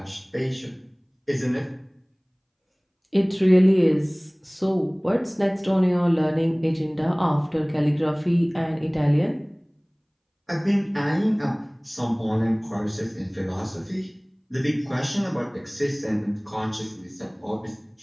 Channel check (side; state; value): both; identical; correlation 1.00